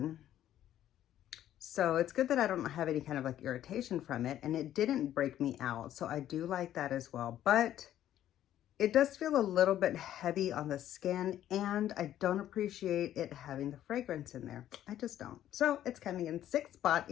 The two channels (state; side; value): quieter; right; 11.9 dB